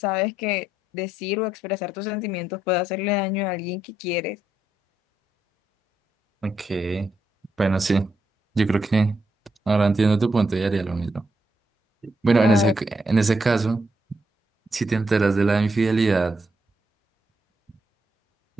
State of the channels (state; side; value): normal; both; correlation 0.79